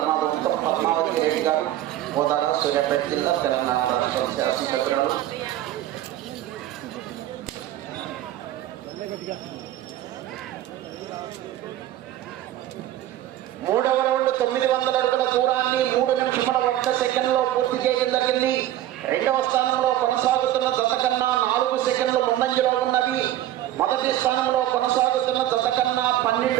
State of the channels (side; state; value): left; quieter; 13.4 dB